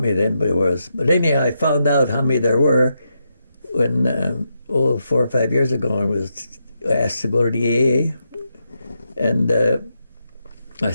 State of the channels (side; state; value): both; inverted; correlation -0.83